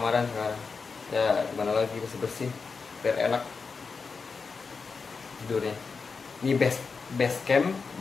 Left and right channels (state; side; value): quieter; right; 4.9 dB